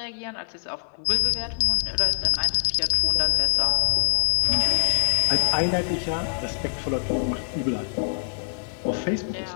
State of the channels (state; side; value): silent; right; 62 dB below the other